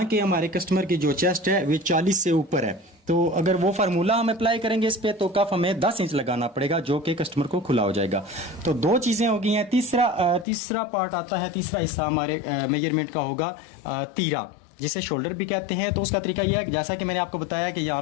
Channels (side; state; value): right; drops out; at 10.5 s